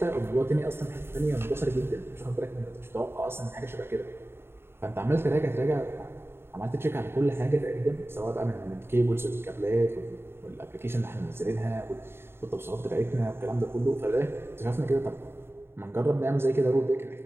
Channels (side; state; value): left; late; 0.11 ms